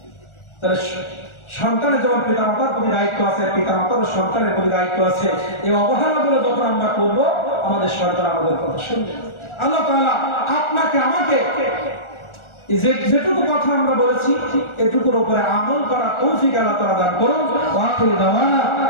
তাহলে সন্তানের যেমন পিতামাতার প্রতি দায়িত্ব আছে, পিতামাতার সন্তানের প্রতি দায়িত্ব আছে। এই অবহেলাগুলো যখন আমরা করবো, আমাদের সন্তান আমাদের কথা শুনবে। আল্লাহ তাআলা আপনাকে আমাকে যেটুকু কথা আমরা বলেছি, এটুকুর উপরে আমল করা তৌফিক আল্লাহ তাআলা দান করুন। ওয়া আখিরু দাওয়ানা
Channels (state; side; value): late; right; 1.4 ms